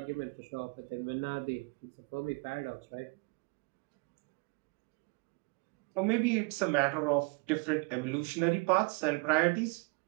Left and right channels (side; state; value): left; quieter; 30.0 dB